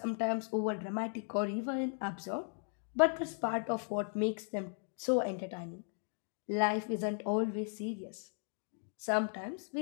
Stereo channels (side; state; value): right; silent; 53 dB below the other